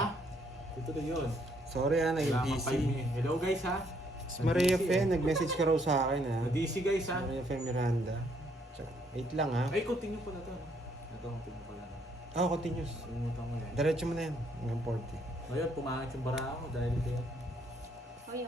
Tutuloy yun. Sorry naging Wala kang busy. 5 minutes. Hello guys ha? Si Maria Fe, nag-message ka raw sa akin ha. Na-DC guys ha? Maria Fe Miranda. Wait lang ha. Ay, continue pa na to. Ito, continue pa lang. Oh, continuous. Sumutan ko yan. Diretso mo na yan. Hanggang 40. Ngayon, pumangit yung bara ko dahil kayo. Oh,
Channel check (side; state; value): both; normal; correlation 0.69